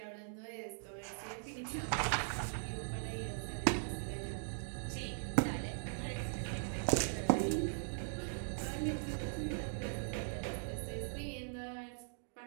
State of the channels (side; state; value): left; silent; digital silence